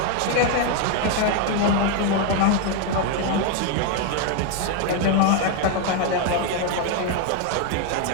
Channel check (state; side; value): different; both; correlation 0.01